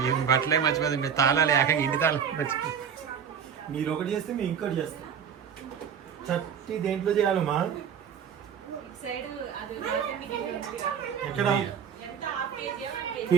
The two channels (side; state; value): left; quieter; 7.7 dB